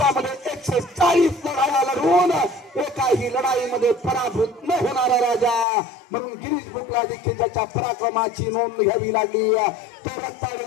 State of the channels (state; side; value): drops out; right; at 5.7 s